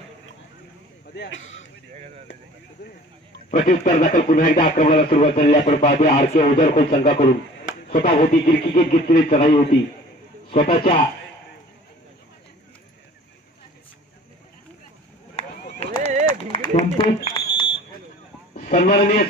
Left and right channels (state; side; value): normal; both; correlation 0.47